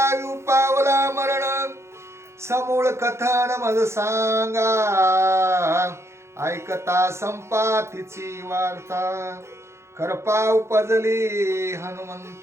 पावला मरण समूळ कथन मज सांगा ऐकता संपातीची वार्ता करपा उपजली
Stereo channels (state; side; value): late; left; 0.13 ms